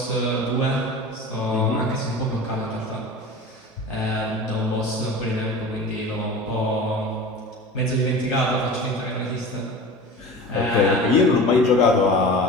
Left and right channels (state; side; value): normal; both; correlation 0.35